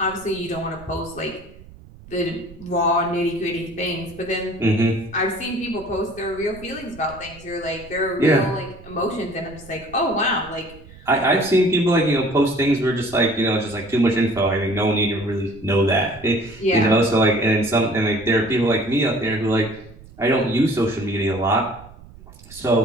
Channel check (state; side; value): noise; right; rumble, 20 dB below the sound